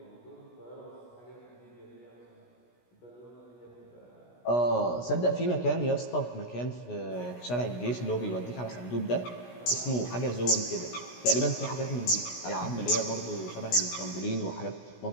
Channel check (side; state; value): right; late; 16 ms